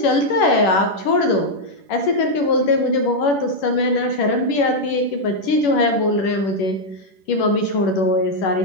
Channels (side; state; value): right; late; 10 ms